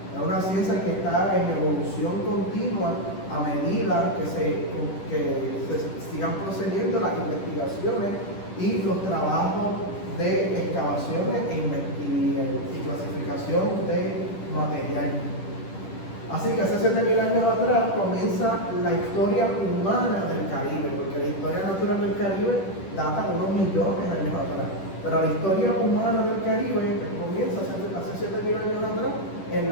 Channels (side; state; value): right; late; 10 ms